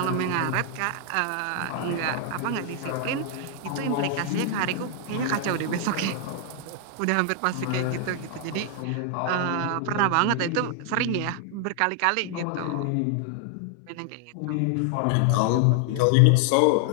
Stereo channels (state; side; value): different; both; correlation 0.00